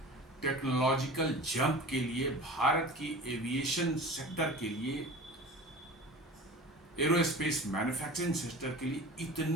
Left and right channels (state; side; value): normal; both; correlation 0.37